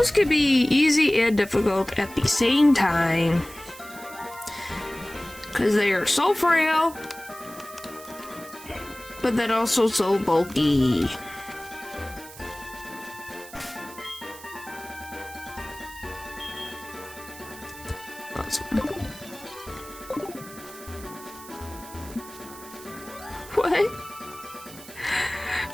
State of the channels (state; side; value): noise; right; hiss, 17 dB below the sound